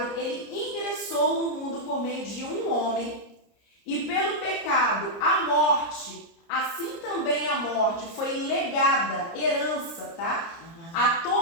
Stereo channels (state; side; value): late; right; 30 ms